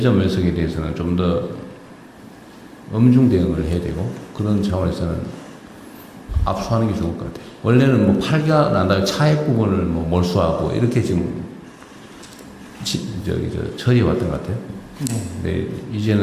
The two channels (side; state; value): both; identical; correlation 1.00